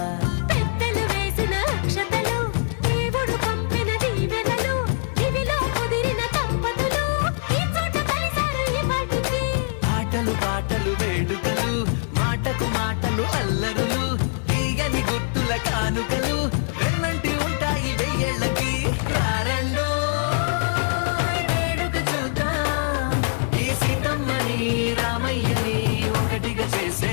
పెద్దలు వేసిన అక్షతలు, దేవుడు పంపిన దీవెనలు, ఇవిలో కుదిరిన దంపతులు ఈ చోట కలిశారు ఈ వాటికి. ఆటలు పాటలు వేడుకలు, మాటకు మాటలు అల్లరులు, తీయని గుట్టుల కానుకలు వెన్నంటి ఉంటాయి వెయ్యేళ్ళకి. రారండో వేడుక చూద్దాం, ఈ సీతమ్మని రామయ్యని ఒకటిగా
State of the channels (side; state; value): right; silent; 63 dB below the other